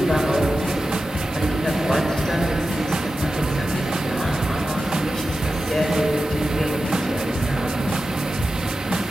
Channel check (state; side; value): normal; both; correlation 0.93